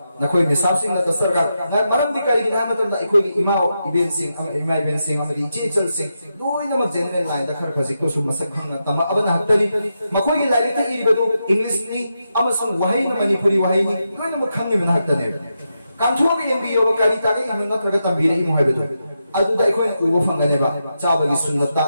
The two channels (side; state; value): both; inverted; correlation -0.86